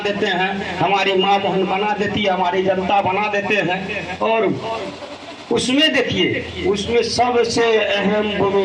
हैं, हमारी माँ बहन बना देती है, हमारी जनता बना देते हैं। और उसमें देखिए उसमें सबसे अहम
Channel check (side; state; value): both; identical; correlation 1.00